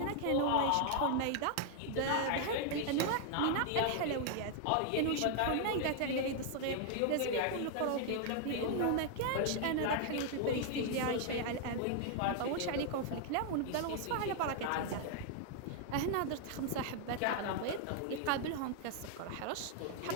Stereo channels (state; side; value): different; both; correlation 0.00